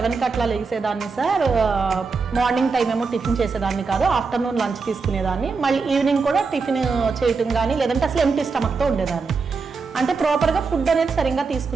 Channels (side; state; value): left; quieter; 4.7 dB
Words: అట్లా లేసేదాన్ని సార్. మార్నింగ్ టైం ఏమో టిఫిన్ చేసేదాన్ని కాదు, ఆఫ్టర్నూన్ లంచ్ తీసుకునేదాన్ని, మళ్ళీ ఈవినింగ్ కూడా టిఫిన్ చేయటం కానీ లేదంటే అసలు ఎంటీ స్టమక్తో ఉండేదాన్ని. అంటే ప్రాపర్గా ఫుడ్ అనేది సరిగ్గా